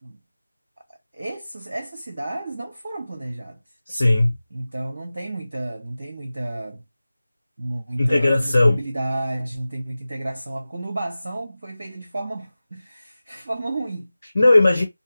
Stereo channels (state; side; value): inverted; both; correlation -0.97